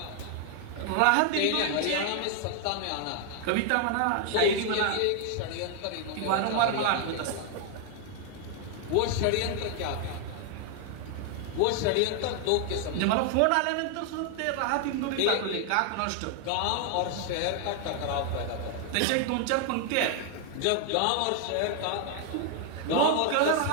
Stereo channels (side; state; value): both; different; correlation 0.00